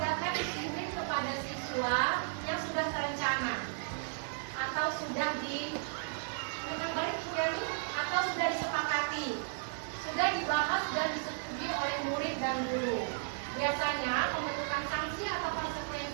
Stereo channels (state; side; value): silent; left; digital silence